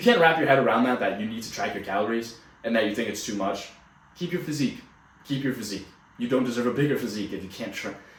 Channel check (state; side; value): identical; both; correlation 1.00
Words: can't wrap your head around that you need to track your calories and that you think it's too much, keep your physique. Keep your physique. You don't deserve a bigger physique if you